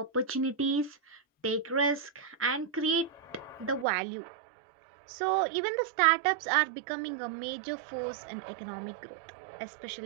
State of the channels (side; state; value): left; drops out; at 3.9 s